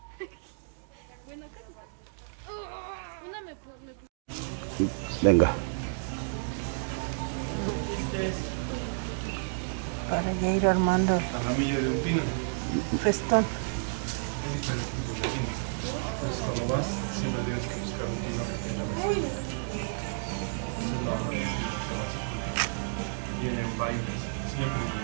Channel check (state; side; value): silent; left; digital silence